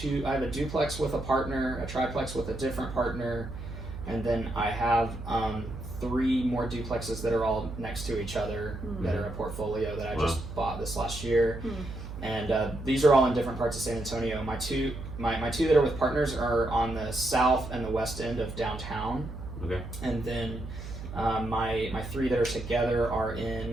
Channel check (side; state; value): right; noise; hum, 10 dB below the sound